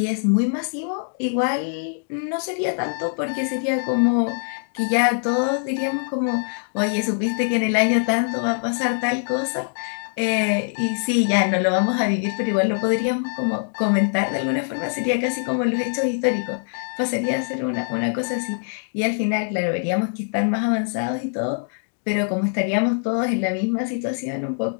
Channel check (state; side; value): silent; right; digital silence